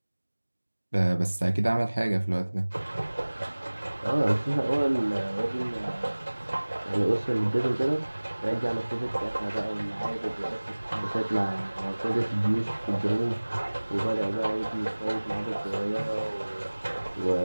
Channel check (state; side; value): inverted; both; correlation -1.00